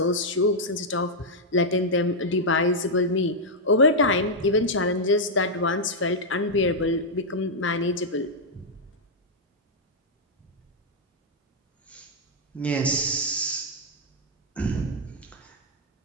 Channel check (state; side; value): normal; both; correlation -0.04